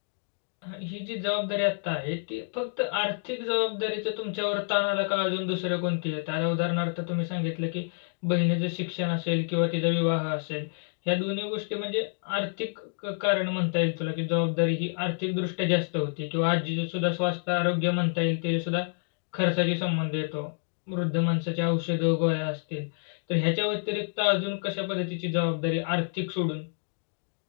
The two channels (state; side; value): silent; right; digital silence